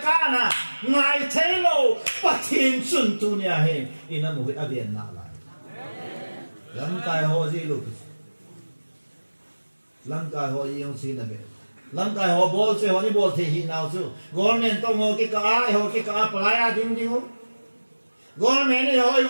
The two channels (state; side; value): inverted; both; correlation -1.00